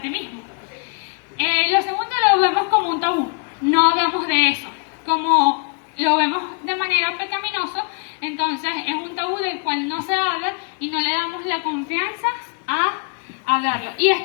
ti mismo. Lo segundo lo vemos como un tabú, no hablamos de eso. Como lo vemos de manera pecaminosa, entonces es un tabú del cual no se habla y no le damos la confianza a hablarlo. Y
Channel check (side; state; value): right; quieter; 37.8 dB